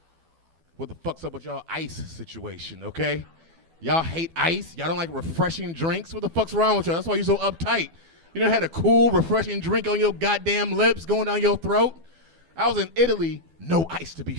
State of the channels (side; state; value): left; late; 12 ms